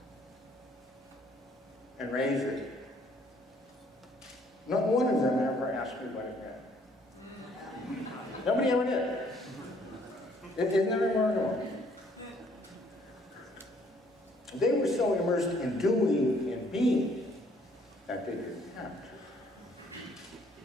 and raise it, not one of them ever asked me what it meant. Nobody ever did. Isn't that remarkable? They were so immersed in doing and being that they didn't have to.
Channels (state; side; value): normal; both; correlation 0.63